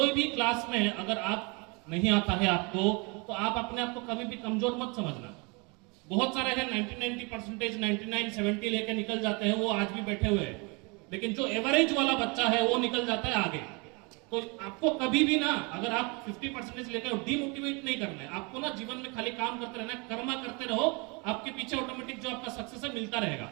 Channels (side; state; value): left; quieter; 30.0 dB